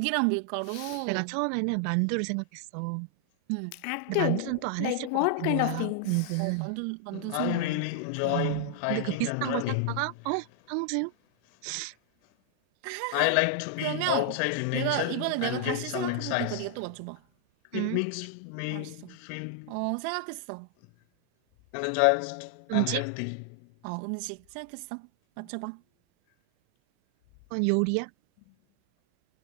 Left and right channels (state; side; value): different; both; correlation 0.00